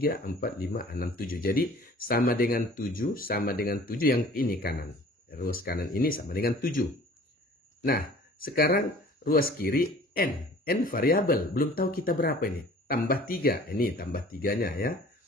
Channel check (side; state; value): both; normal; correlation 0.49